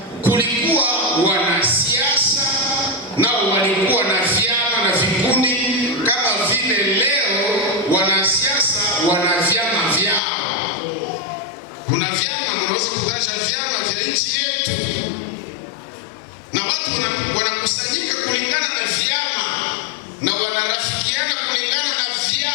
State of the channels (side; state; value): right; drops out; at 10.2 s